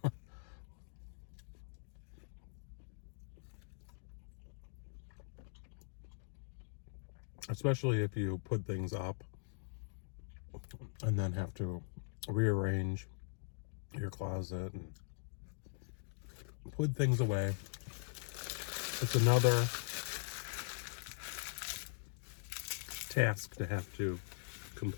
Especially if you put things up and then have to rearrange your closet and put things away. It's another task to have to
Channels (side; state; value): right; silent; digital silence